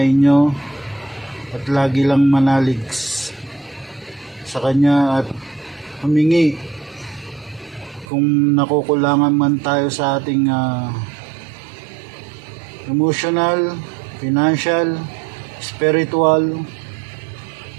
at lagi lang manalig sa Kanya at humingi kung nakukulangan man tayo sa ating emotional, financial, spiritual.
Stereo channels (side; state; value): left; drops out; at 8.1 s